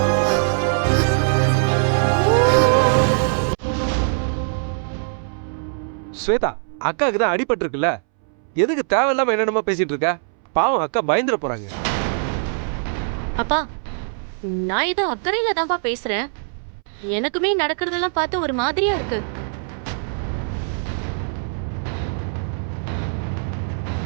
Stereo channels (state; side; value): silent; left; 64 dB below the other